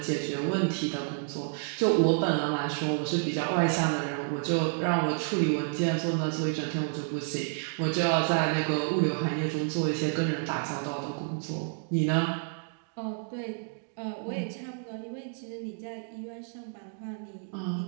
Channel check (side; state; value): left; silent; 57 dB below the other